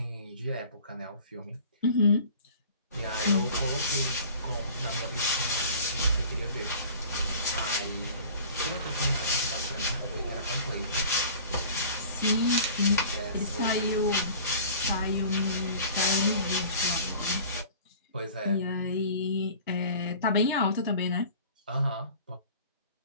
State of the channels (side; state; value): both; inverted; correlation -0.44